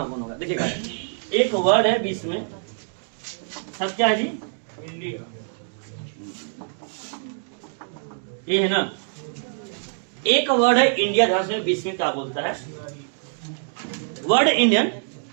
कौन होगा। देखिएगा एक वर्ड है 20 में सब क्या है जी इंडिया ये है ना। एक वर्ड है इंडिया ध्यान से 20 में क्या बोलता है word Indian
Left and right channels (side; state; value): left; silent; digital silence